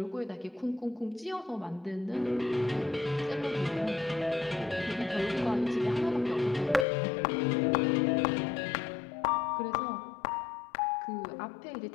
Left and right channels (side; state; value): right; drops out; at 6.9 s